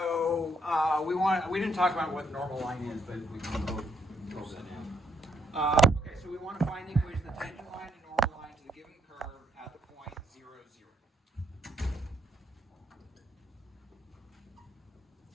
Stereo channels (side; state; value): both; normal; correlation 0.72